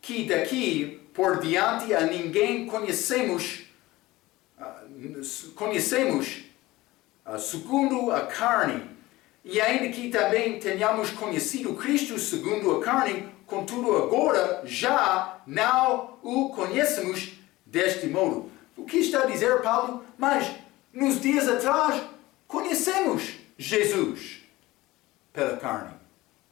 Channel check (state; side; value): quieter; right; 18.9 dB